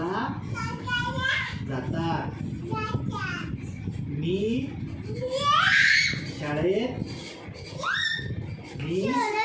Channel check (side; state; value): both; identical; correlation 1.00